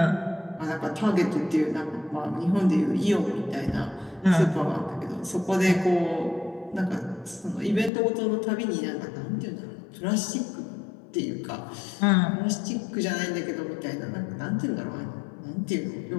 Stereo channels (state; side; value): drops out; right; at 7.9 s